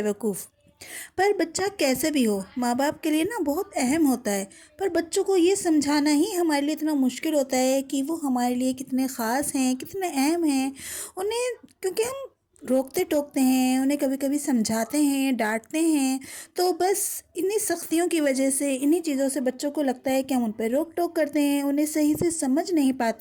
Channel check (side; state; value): both; identical; correlation 1.00